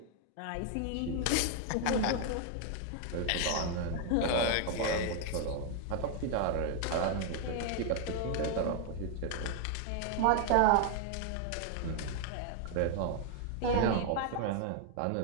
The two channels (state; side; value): different; both; correlation 0.00